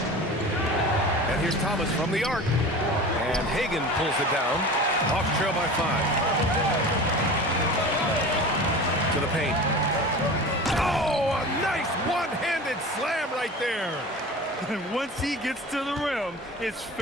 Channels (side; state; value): both; normal; correlation 0.35